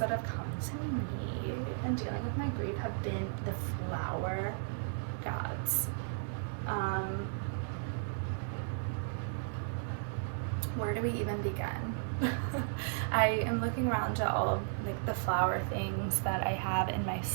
have come to me in dealing with my grief have been the flower gods. Where do we even begin? I am looking around at all of like the flower things that I have in my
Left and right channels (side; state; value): left; silent; digital silence